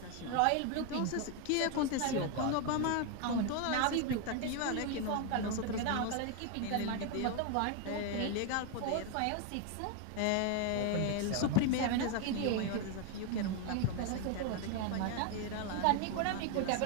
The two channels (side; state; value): both; different; correlation 0.01